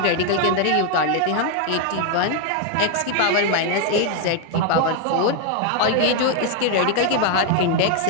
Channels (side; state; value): both; different; correlation 0.00